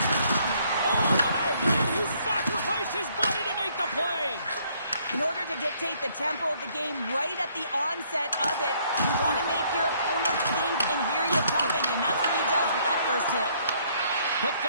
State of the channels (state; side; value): inverted; both; correlation -0.66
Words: Oh, what a hit! He sacrificed his body to make the play. In order to dictate the tempo of the game right at the onset of it, you want to make your opponent think and hear you coming, and that's what he does with that first hit. Picked